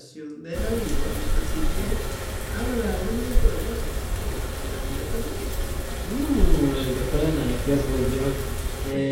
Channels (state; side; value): identical; both; correlation 1.00